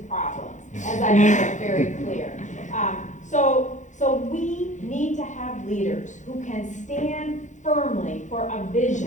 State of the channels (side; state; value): right; late; 0.35 ms